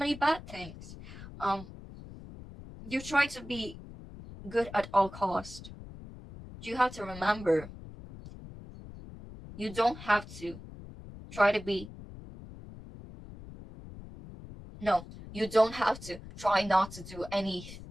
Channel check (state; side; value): noise; left; rumble, 14 dB below the sound